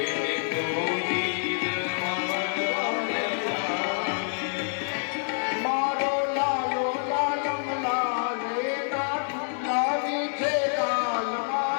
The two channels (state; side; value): silent; right; 58 dB below the other